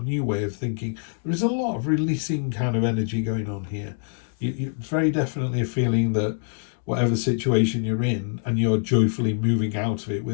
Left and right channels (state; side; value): silent; right; digital silence